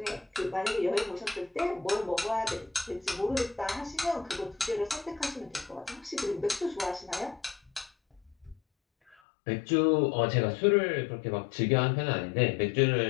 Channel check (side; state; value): right; drops out; at 9.2 s